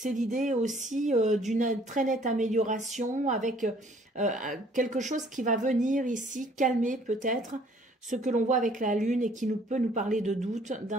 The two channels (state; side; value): normal; both; correlation 0.59